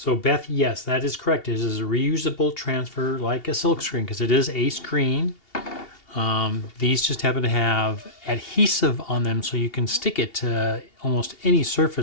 Beth, yes, that is correct. It is a reusable transfer like a Silkscreen because it is a screen. These just happen to have adhesive on them so you can stick it to almost any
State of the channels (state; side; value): late; right; 2.8 ms